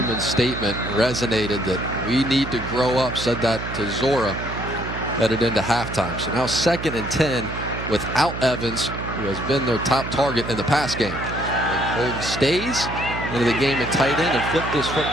statement resonated that we need to grow up, said that to Zora headed into halftime. So now 2nd and 10 without Evans, who has been their top target in the pass game. And Holden Stays into the game at tight end and flipped this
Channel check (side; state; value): right; noise; hum, 7 dB below the sound